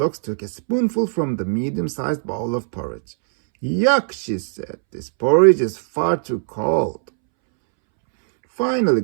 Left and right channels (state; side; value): silent; left; 66 dB below the other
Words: took a spoonful from the medium-sized bowl of porridge. Yuck, she said, this porridge is far too cold. Finally,